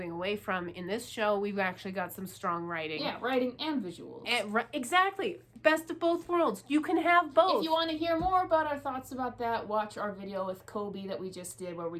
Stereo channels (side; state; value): both; identical; correlation 1.00